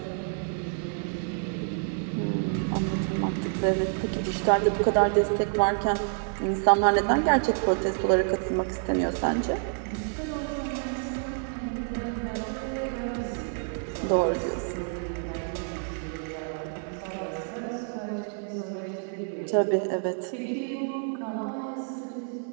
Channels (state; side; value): silent; left; 59 dB below the other